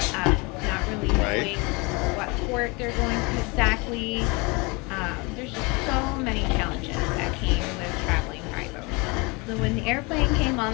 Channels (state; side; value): quieter; right; 27.8 dB